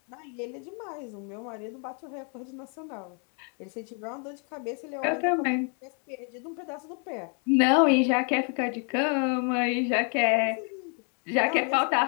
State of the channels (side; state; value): right; quieter; 39.4 dB